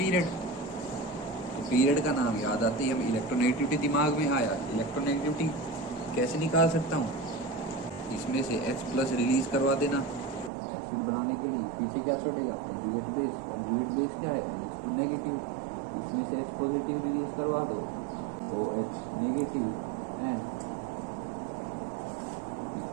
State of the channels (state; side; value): drops out; left; at 10.5 s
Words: तो पीरियड का नाम याद आते ही हमें इलेक्ट्रोनेगेटिविटी दिमाग में आया। इलेक्ट्रोनेगेटिविटी कैसे निकाल सकता हूँ, इसमें से H+ रिलीज करवा देना एसिड बनाने के लिए। पीछे क्या छोड़ेगा, कंजुगेट बेस। कंजुगेट बेस क्या है, NH2 नेगेटिव। इसमें से H पॉजिटिव रिलीज करवा दो, OH नेगेटिव, एंड